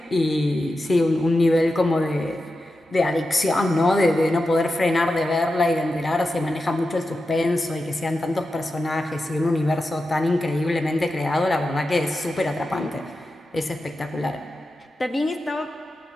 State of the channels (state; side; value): normal; both; correlation 0.91